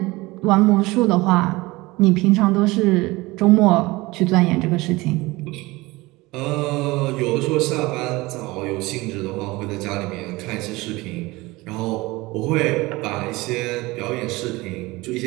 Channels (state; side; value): quieter; left; 21.4 dB